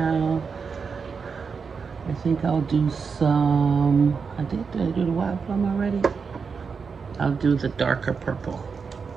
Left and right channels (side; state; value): left; quieter; 5.5 dB